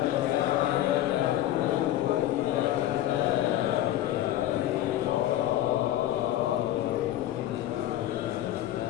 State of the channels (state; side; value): quieter; right; 13.3 dB